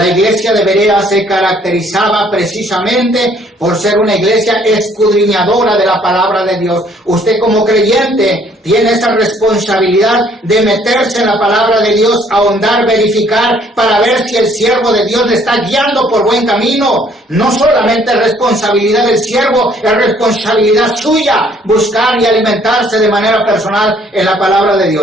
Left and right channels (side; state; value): both; normal; correlation 0.62